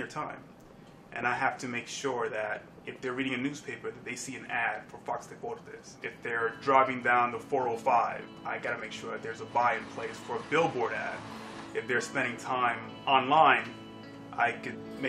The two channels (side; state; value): both; identical; correlation 1.00